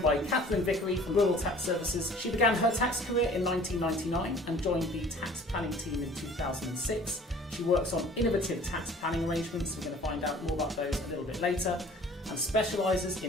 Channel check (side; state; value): both; normal; correlation 0.49